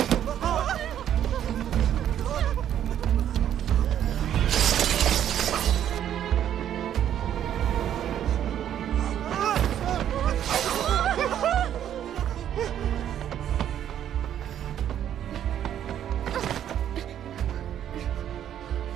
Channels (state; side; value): quieter; left; 10.4 dB